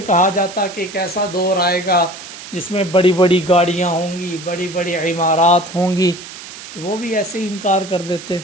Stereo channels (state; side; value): noise; right; hiss, 14 dB below the sound